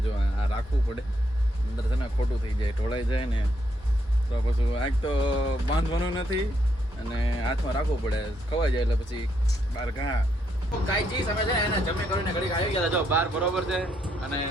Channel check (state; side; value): normal; both; correlation 0.75